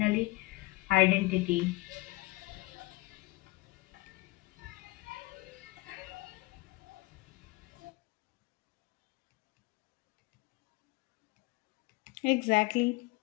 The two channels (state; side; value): quieter; right; 21.5 dB